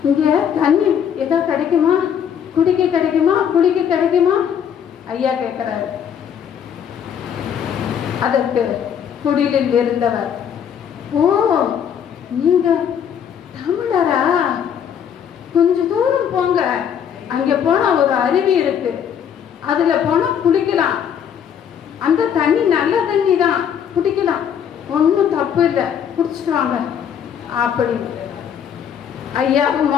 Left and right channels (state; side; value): quieter; right; 8.4 dB